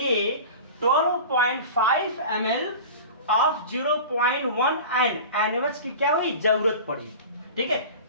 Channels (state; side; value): inverted; both; correlation -0.35